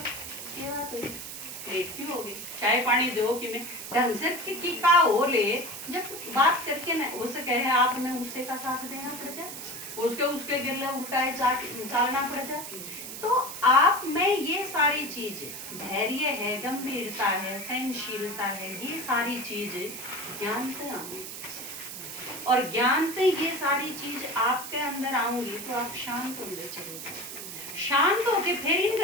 क्या बात हुई, लेट क्यों हो गई, चाय पानी दो कि मैं ढंग से की का हो ले, जब बात करके न हो सके है आपने उससे का साथ देना पड़ जाए, उसके गिरले उल्टाए चालना पड़ जाए। तो आप में ये सारी चीज धैर्य है, गंभीरता है, सहनशीलता है, ये सारी चीज ज्ञान से आऊंगी और ज्ञान से ये सारी चीज आपके अंदर आऊंगी तो आप शांत होंगे, चलेगा शांत होके फिर इन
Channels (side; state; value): right; noise; hiss, 9 dB below the sound